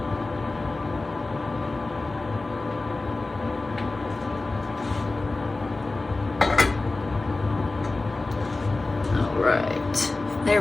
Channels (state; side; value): quieter; right; 3.3 dB